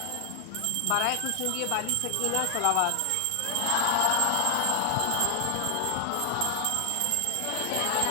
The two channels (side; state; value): both; different; correlation 0.00